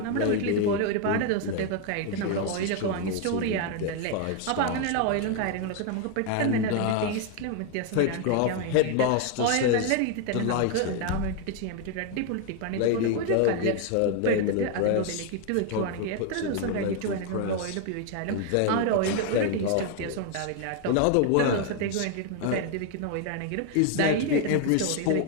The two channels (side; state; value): both; different; correlation 0.01